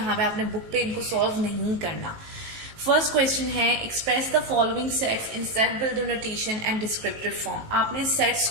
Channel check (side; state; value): left; late; 18 ms